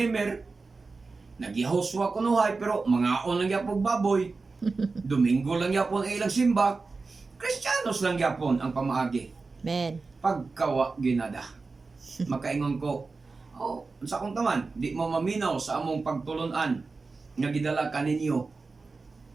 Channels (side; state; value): left; quieter; 4.1 dB